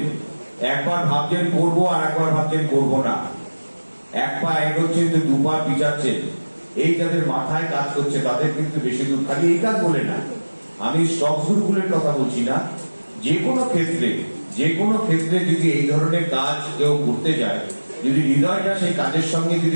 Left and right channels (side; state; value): both; inverted; correlation -1.00